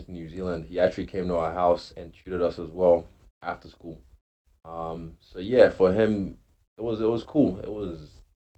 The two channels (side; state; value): both; identical; correlation 1.00